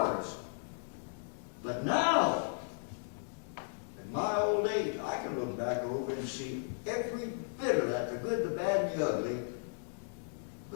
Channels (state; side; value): silent; right; digital silence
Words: But now, in my old age, I can look back over and see every bit of that, the good, the bad, and the ugly.